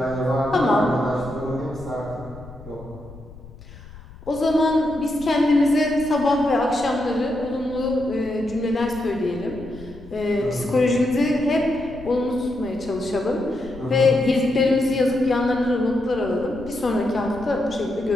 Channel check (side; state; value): left; noise; rumble, 18 dB below the sound